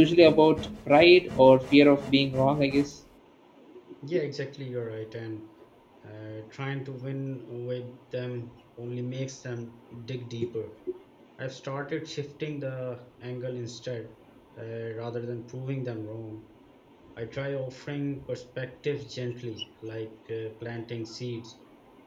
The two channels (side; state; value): both; identical; correlation 1.00